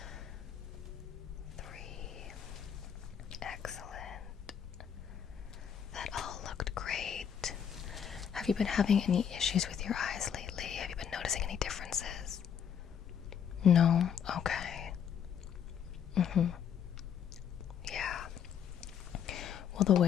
Have you been having any issues with your eyes lately? Have you been noticing any differences? No? Okay. Yeah. Well, the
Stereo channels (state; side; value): quieter; right; 8.2 dB